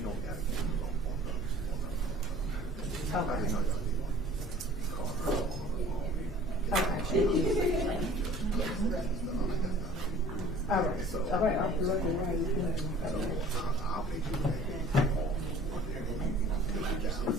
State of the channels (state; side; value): normal; both; correlation 0.48